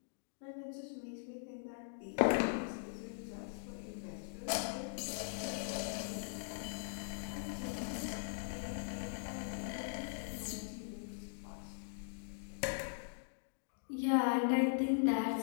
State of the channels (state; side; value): silent; right; digital silence